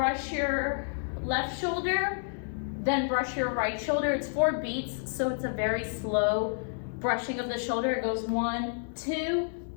your left shoulder, then brush your right shoulder. It's 4 beats, so it's a very slow brushing of the shoulder. It goes 1, 2,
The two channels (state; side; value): silent; right; digital silence